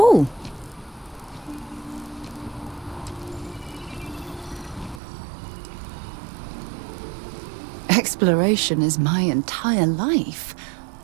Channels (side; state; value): left; drops out; at 5.0 s